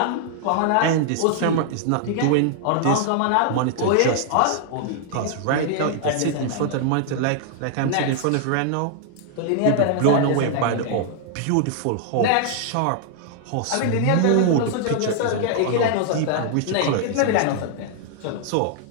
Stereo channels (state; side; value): different; both; correlation -0.01